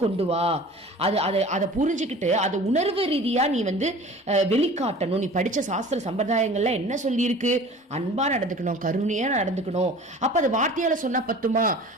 கொண்டு வா. அதை புரிஞ்சுக்கிட்டு அதை உணர்வு ரீதியா நீ வந்து வெளிக்காட்டணும். நீ படிச்ச சாஸ்திர சம்பிரதாயங்கள்ல என்ன சொல்லி இருக்கு, அன்பா நடந்துக்கணும், கருணையா நடந்துக்கணும். அப்ப அது வார்த்தையால சொன்னா பத்துமா,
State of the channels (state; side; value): normal; both; correlation 0.43